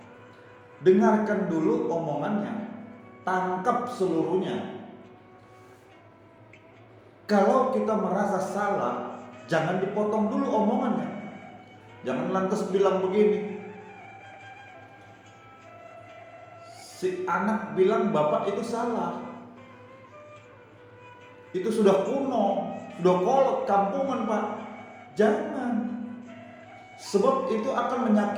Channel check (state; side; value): identical; both; correlation 1.00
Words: dengarkan dulu omongannya, tangkap seluruhnya. Kalau kita merasa salah, jangan dipotong dulu omongannya. Jangan lantas bilang begini, si anak bilang bapak itu salah. Itu sudah kuno, sudah kolot, kampungan pak. Jangan. Sebab itu akan